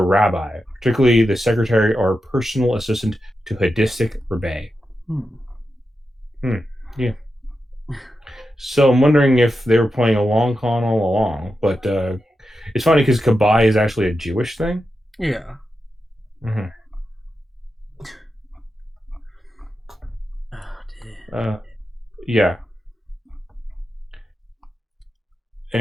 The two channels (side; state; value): both; normal; correlation 0.89